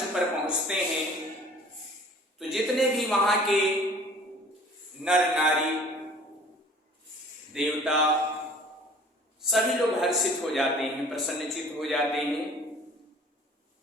पर पहुंचते हैं तो जितने भी वहां के नर नारी देवता सभी लोग हर्षित हो जाते हैं, प्रसन्नचित हो जाते हैं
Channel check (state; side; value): normal; both; correlation 0.49